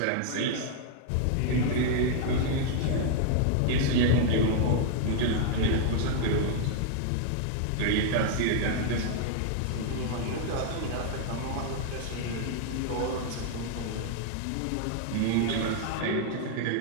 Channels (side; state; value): both; different; correlation -0.01